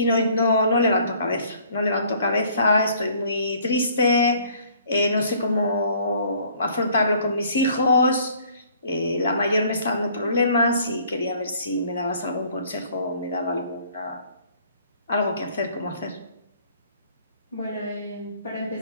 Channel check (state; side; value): inverted; both; correlation -0.58